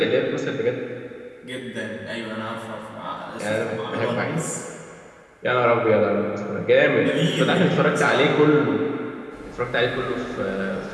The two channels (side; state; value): both; identical; correlation 1.00